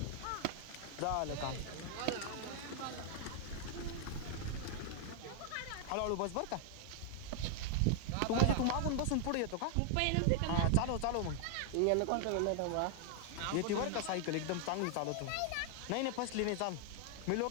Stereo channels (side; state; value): both; different; correlation 0.00